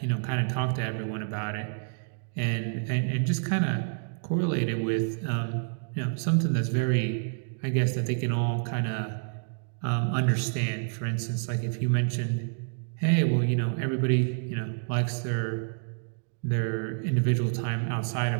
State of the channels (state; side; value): silent; left; digital silence